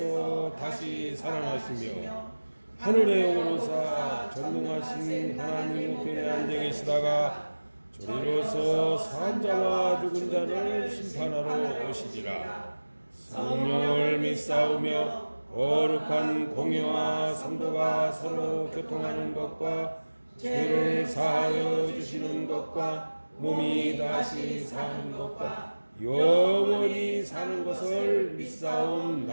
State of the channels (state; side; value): inverted; both; correlation -1.00